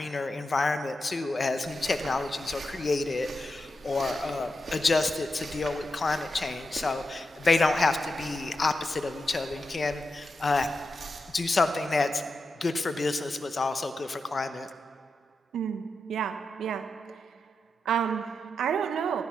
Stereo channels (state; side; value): normal; both; correlation 0.88